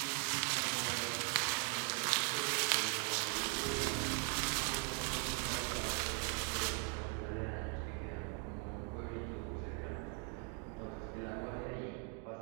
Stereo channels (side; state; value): left; quieter; 36.4 dB